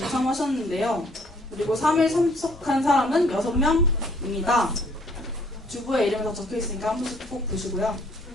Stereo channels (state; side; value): normal; both; correlation 0.61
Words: 그리고 3일 참석한 사람은 6명입니다. 주부의 이름이 다 적혀있으니까 한 번씩 꼭 보시고요.